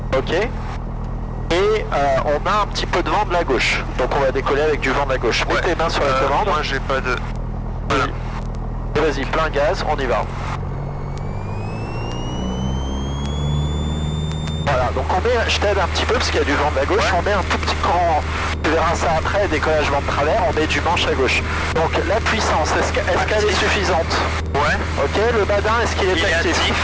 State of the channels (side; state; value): both; identical; correlation 1.00